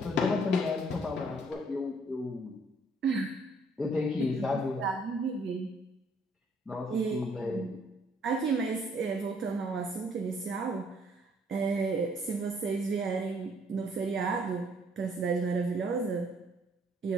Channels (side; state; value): both; normal; correlation 0.64